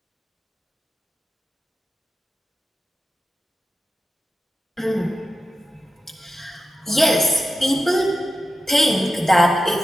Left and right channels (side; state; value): both; normal; correlation 0.91